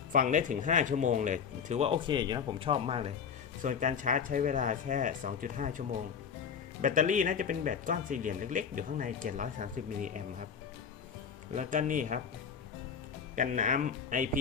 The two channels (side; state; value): right; quieter; 6.8 dB